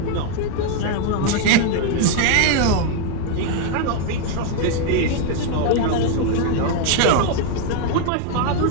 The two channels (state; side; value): different; both; correlation 0.01